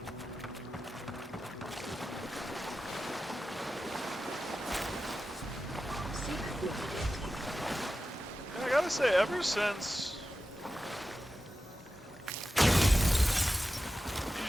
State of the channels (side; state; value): both; normal; correlation 0.93